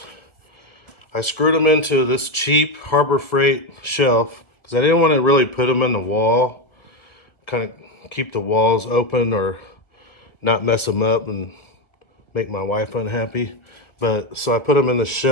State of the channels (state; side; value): late; right; 1.5 ms